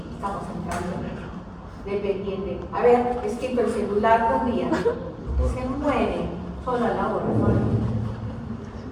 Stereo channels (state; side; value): identical; both; correlation 1.00